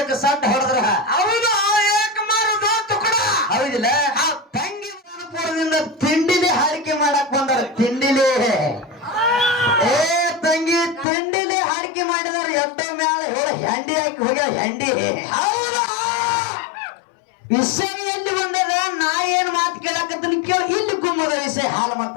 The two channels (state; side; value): drops out; right; at 11.1 s